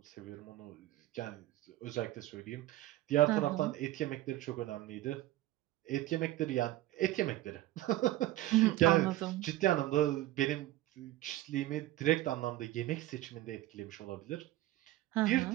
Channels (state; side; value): quieter; left; 15.8 dB